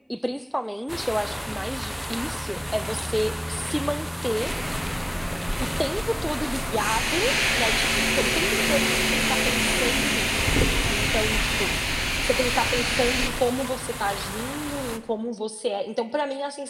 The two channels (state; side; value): identical; both; correlation 1.00